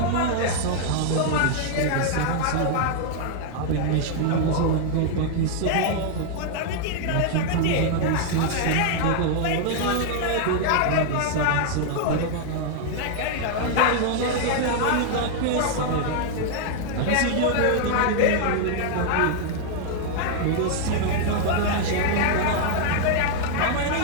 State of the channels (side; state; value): both; different; correlation 0.00